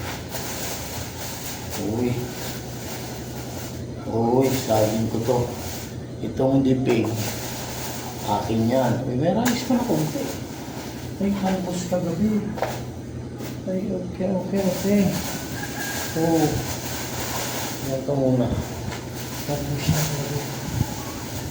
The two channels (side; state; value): both; identical; correlation 1.00